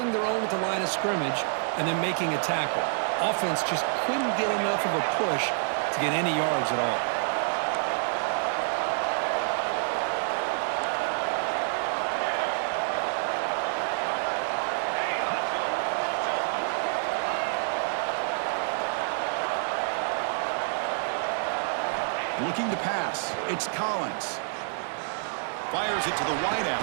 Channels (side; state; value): left; silent; digital silence